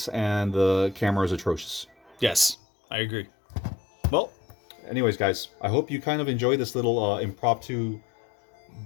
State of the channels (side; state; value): right; drops out; at 2.6 s